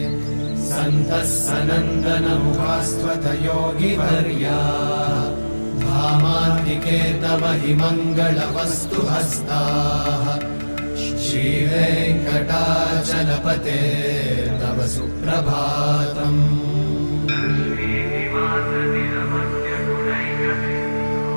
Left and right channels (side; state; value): both; inverted; correlation -1.00